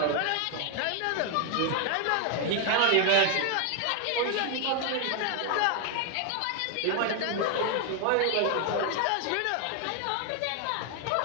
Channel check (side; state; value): both; different; correlation 0.01